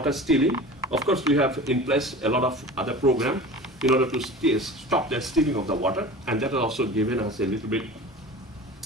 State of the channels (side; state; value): both; normal; correlation 0.37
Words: stealing. Of course, we have in place a lot of other programs in order to stop the stealing of the water, and that has also given us a little bit